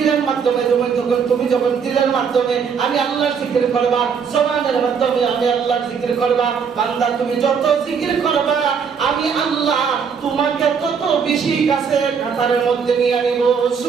মাধ্যমে তুমি যখন দিলের মাধ্যমে আমি আল্লাহর জিকির করবা, জবানের মাধ্যমে আমি আল্লাহর জিকির করবা, বান্দা তুমি যত জিকির করবা আমি আল্লাহ তোমাকে তত বেশি কাছে কাতারের মধ্যে নিয়ে আনিব।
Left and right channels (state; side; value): quieter; left; 6.4 dB